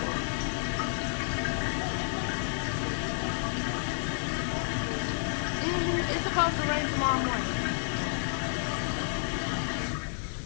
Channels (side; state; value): right; silent; digital silence